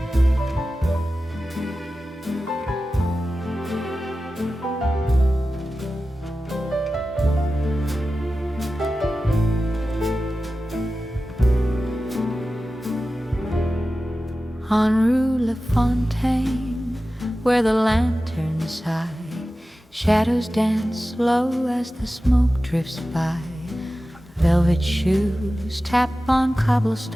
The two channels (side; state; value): both; normal; correlation 0.94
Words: On Rue Lafontaine, where the lanterns high, shadows dance low as the smoke drifts by. Velvet shoes tap on